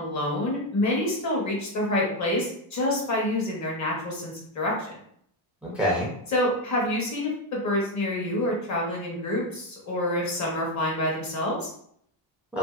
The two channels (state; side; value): normal; both; correlation 0.07